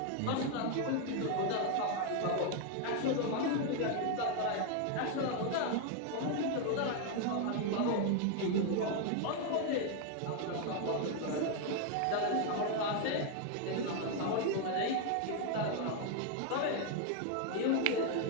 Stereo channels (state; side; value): different; both; correlation 0.01